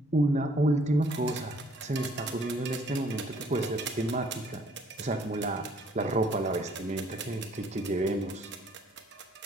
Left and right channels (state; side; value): normal; both; correlation 0.61